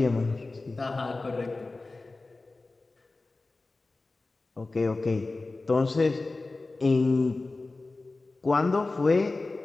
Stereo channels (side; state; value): right; quieter; 3.4 dB